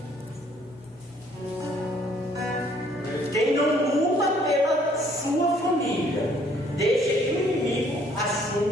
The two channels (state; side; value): normal; both; correlation 0.62